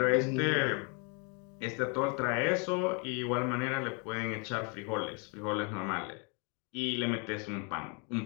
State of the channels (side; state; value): right; quieter; 35.3 dB